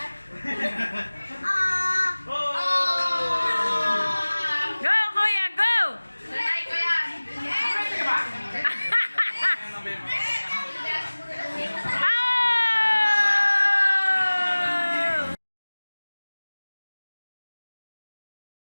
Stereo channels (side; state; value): both; inverted; correlation -1.00